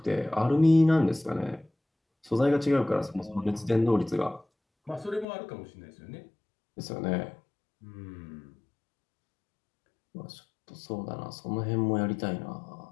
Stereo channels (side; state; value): right; drops out; at 5.2 s